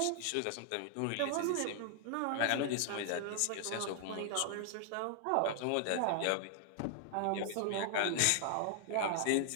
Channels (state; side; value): different; both; correlation 0.00